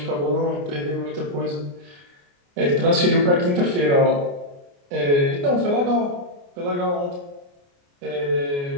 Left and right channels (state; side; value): late; left; 28 ms